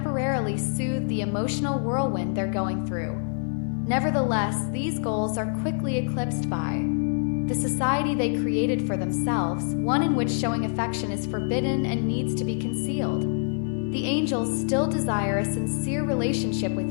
soothe the emotional whirlwind they're going through. Nevertheless, these goals are quickly eclipsed by the society they created for themselves, one in which showing affection is forbidden and needs to be concealed. The angels still desire a sincere relationship with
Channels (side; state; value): right; silent; digital silence